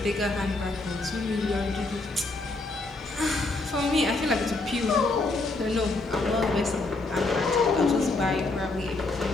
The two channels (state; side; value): quieter; right; 3.2 dB